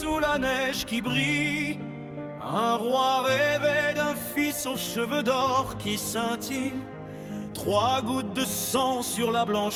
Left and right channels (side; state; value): both; identical; correlation 1.00